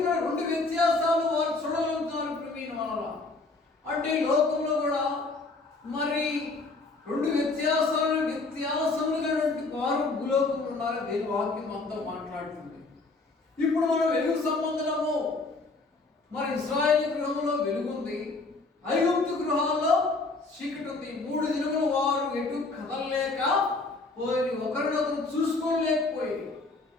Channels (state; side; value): quieter; right; 3.5 dB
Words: 2 వ్యత్యాసాలు వారు చూడగలుగుతున్నారు ప్రవీణ వల్ల. అంటే లోకంలో కూడా మరి 2 వ్యత్యాసములుగా వారు భూలోకంలో ఉన్నారు. దేని వాక్యం అంతా మాట్లాడుతుంది. ఇప్పుడు మనం వెలుగు సంబంధము మరి ఇశ్రాయేలు గృహంలో వెలుగుంది, ఐగుప్తు గృహాల్లో చీకటి ఉంది. 3 దినములు వారు ఎటు కదలలేక పోయి ఒకరినొకరు చూసుకోలేకపోయి.